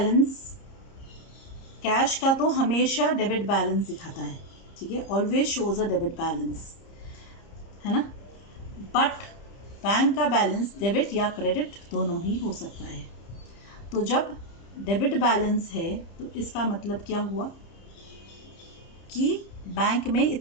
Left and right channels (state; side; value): late; right; 30 ms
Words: कैश का तो हमेशा डेबिट बैलेंस दिखाता है, ठीक है, always shows a debit balance, है ना। बट बैंक का बैलेंस डेबिट या क्रेडिट दोनों ही हो सकता है। तो जब डेबिट बैलेंस है तो इसका मतलब क्या हुआ कि बैंक में